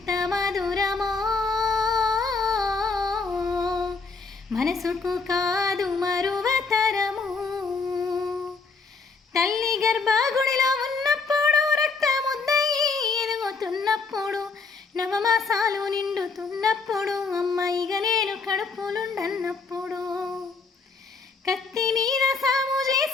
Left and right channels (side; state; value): right; quieter; 4.5 dB